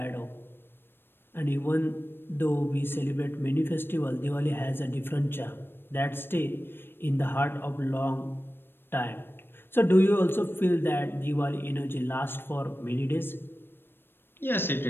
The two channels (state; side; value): late; right; 0.10 ms